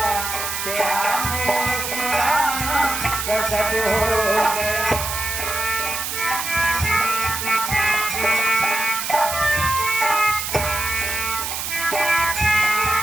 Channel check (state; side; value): noise; right; hiss, 3 dB below the sound